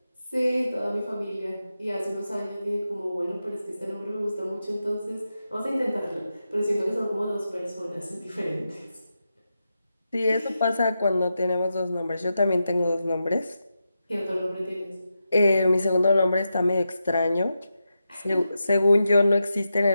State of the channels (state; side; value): inverted; both; correlation -0.88